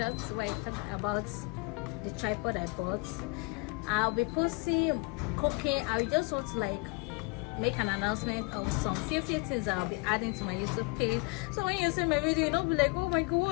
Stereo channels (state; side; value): quieter; right; 29.5 dB